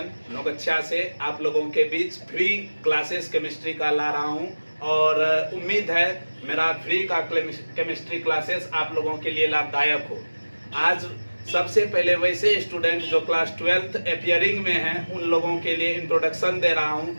नौगच्छा से आप लोगों के बीच फ्री क्लासेस केमिस्ट्री का ला रहा हूं और उम्मीद है मेरा फ्री का केमिस्ट्री क्लासेस आप लोगों के लिए लाभदायक हो। आज सबसे पहले वैसे स्टूडेंट जो क्लास 12th अपियरिंग में हैं उन लोगों के लिए इंट्रोडक्शन दे रहा हूं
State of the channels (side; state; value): both; inverted; correlation -1.00